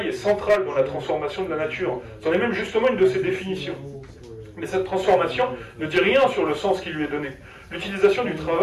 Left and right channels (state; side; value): identical; both; correlation 1.00